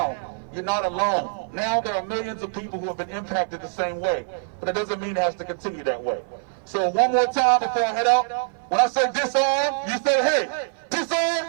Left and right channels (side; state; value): left; silent; 57 dB below the other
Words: you're not alone. Now there are millions of people who have been impacted the same way. But it doesn't mean it has to continue that way. So one more time before I head out, when I say disarm, you say hey. Disarm!